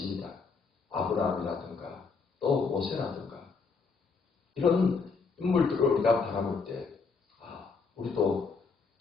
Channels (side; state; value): right; quieter; 4.8 dB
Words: 아브라함이라든가 또 모세라든가 이런 인물들을 우리가 바라볼 때 우리도